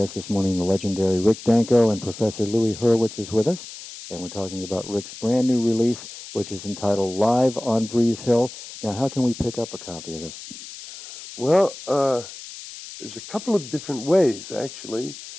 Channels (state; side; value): noise; left; hiss, 14 dB below the sound